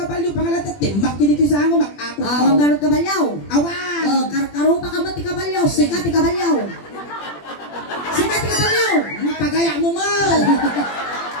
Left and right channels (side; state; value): right; late; 21 ms